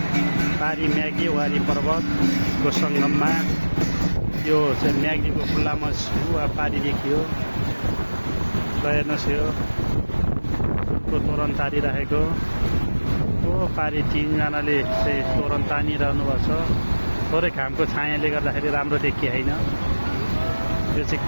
पारी म्याग्दी वारी पर्वतको सङ्गममा यो चाहिँ म्याग्दीको खुल्लामा पारी देखियो र हेर्नुहोस् यो फुलको तोरण तारिरहेको पारी तीनजनाले चाहिँ तोरण तानिरहनु भएको छ। थोरै घामको छायाले गर्दाखेरि राम्रो देखिएन। यो चाहिँ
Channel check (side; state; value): both; inverted; correlation -1.00